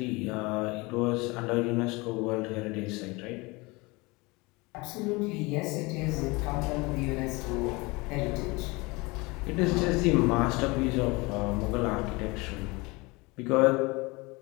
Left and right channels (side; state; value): right; quieter; 24.9 dB